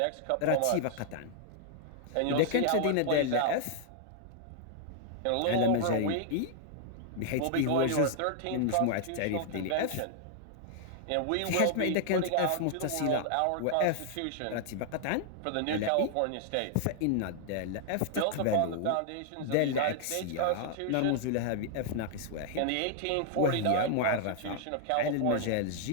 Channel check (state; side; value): different; both; correlation -0.01